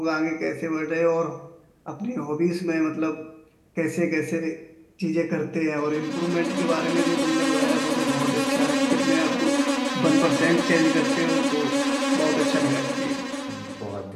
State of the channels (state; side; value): identical; both; correlation 1.00